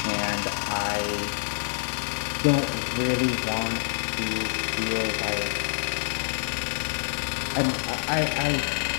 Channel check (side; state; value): right; silent; digital silence